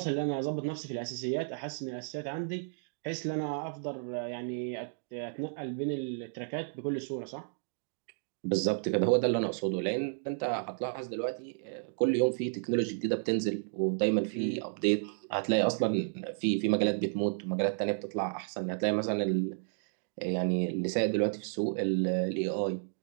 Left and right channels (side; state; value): left; silent; digital silence